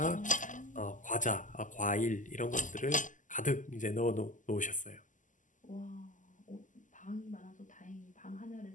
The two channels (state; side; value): late; right; 0.37 ms